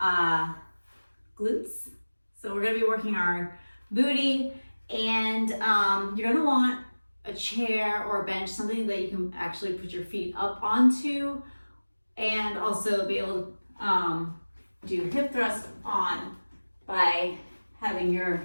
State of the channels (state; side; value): inverted; both; correlation -1.00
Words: glutes. So we're going to be working our booty and you're going to want a chair or a bench, something that you can actually put your feet up onto and also be able to do hip thrust on by having your